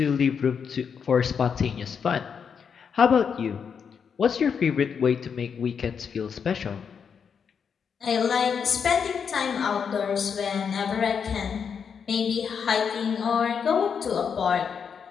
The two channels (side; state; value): right; quieter; 6.7 dB